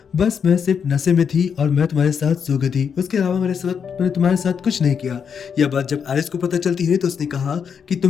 बस मैं सिर्फ नशे में थी और मैं तुम्हारे साथ सो गई थी, उसके अलावा मैंने तुम्हारे साथ कुछ नहीं किया। यह बात जब एरिस को पता चलती है तो उसने कहा कि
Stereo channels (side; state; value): right; quieter; 6.9 dB